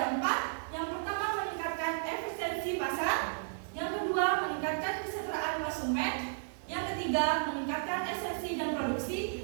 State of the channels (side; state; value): left; silent; 55 dB below the other